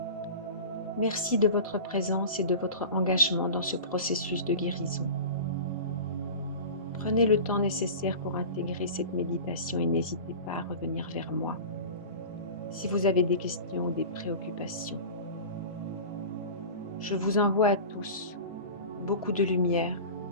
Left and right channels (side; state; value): both; inverted; correlation -0.34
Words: Merci de votre présence et de votre engagement dans ce processus de guérison. Prenez le temps nécessaire pour intégrer cette méditation et n'hésitez pas à revenir vers moi si vous avez des questions ou des préoccupations. Je vous envoie à tous beaucoup de lumière